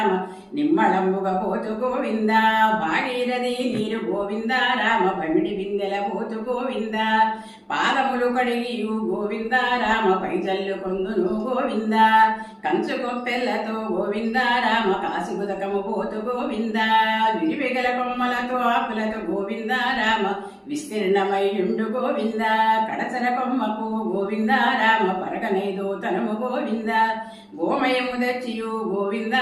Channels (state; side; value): identical; both; correlation 1.00